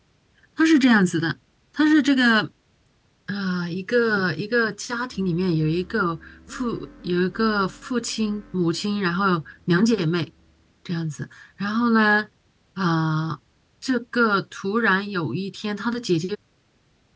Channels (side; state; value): both; identical; correlation 1.00